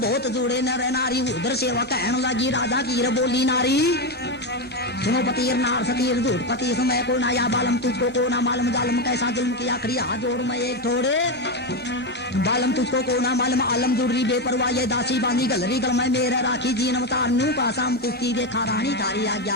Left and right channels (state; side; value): normal; both; correlation 0.11